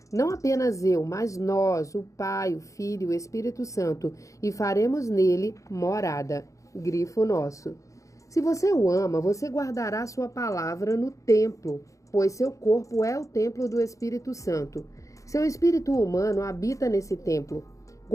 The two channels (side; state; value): right; late; 0.15 ms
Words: Não apenas eu, mas nós, o Pai, o Filho e o Espírito Santo, e faremos nele morada. Grifo nosso. Se você o ama, você guardará sua palavra no templo, pois seu corpo é o templo do Espírito Santo. Seu espírito humano habita nesse templo.